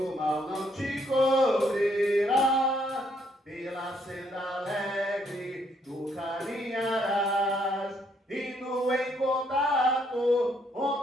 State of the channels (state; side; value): normal; both; correlation 0.70